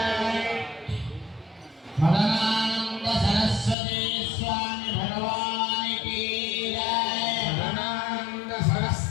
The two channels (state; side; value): drops out; right; at 3.8 s